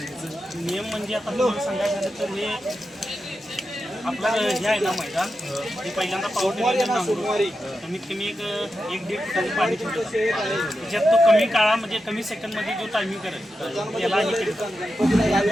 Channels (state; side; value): normal; both; correlation 0.89